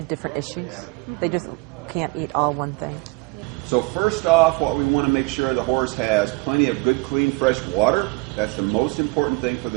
different issues. They just can't eat all one thing. So first off, what we want to make sure the horse has plenty of good, clean, fresh water. That's the most important thing for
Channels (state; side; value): quieter; left; 26.7 dB